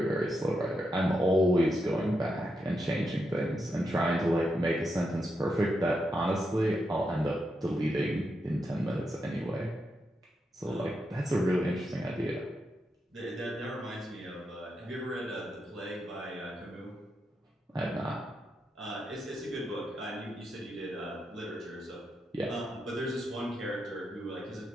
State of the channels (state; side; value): normal; both; correlation 0.84